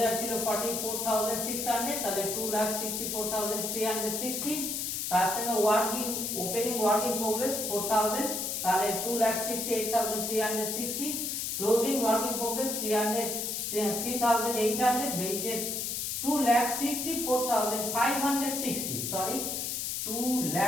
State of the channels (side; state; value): left; noise; hiss, 2 dB below the sound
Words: ছিল 44,600, তাহলে 2,64,360, তার সঙ্গে ওপেনিং ওয়ার্ক ইন প্রোগ্রেস 4,000, তাহলে 2,68,360, ক্লোজিং ওয়ার্ক ইন প্রোগ্রেস 3,800, বেরিয়েছে 2,64,560, সরি